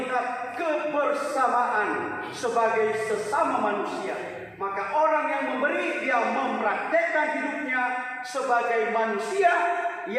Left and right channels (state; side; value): identical; both; correlation 1.00